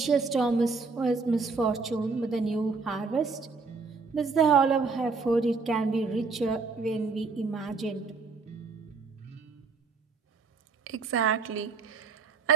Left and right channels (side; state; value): left; quieter; 4.5 dB